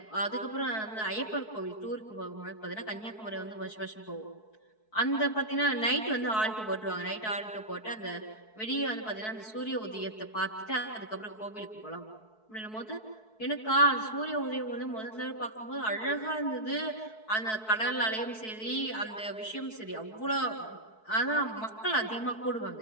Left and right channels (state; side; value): late; right; 4.6 ms